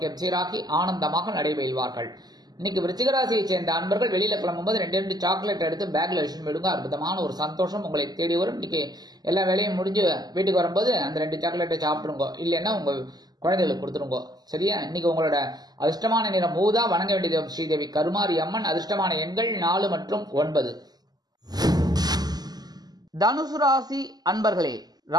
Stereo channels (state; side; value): late; left; 0.20 ms